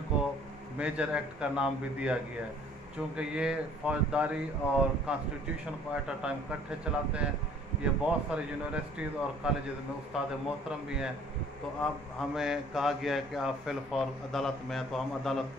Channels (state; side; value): noise; left; rumble, 24 dB below the sound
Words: کو میجر ایکٹ کا نام بھی دیا گیا ہے، چونکہ یہ فوجداری اور کانسٹیٹیوشن کو ایٹ اے ٹائم کٹھے چلاتے ہیں. یہ بہت سارے یونیورسٹیز اور کالجز میں استاد محترم بھی ہیں. تو اب ہمیں کہا گیا ہے کہ آپ فی الفور عدالت میں ہیں، تو ہم عدالت